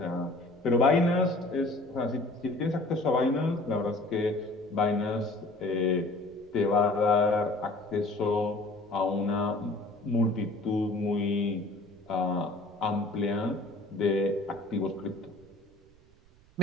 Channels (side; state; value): right; noise; rumble, 28 dB below the sound